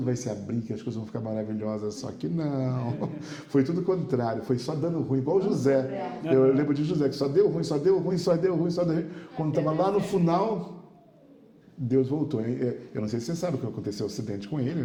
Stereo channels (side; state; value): both; identical; correlation 1.00